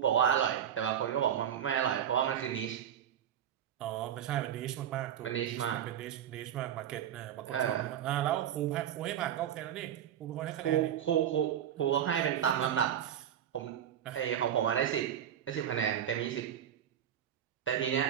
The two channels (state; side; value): quieter; left; 9.9 dB